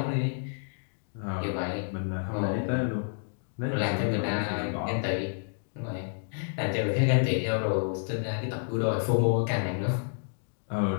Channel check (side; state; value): right; silent; digital silence